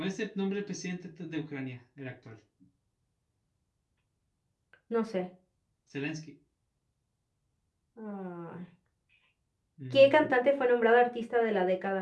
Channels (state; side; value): identical; both; correlation 1.00